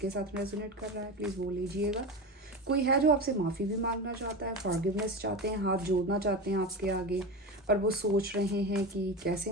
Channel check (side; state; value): both; normal; correlation 0.23